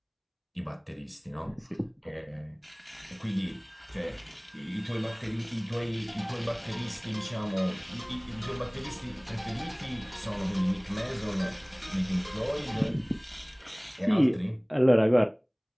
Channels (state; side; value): identical; both; correlation 1.00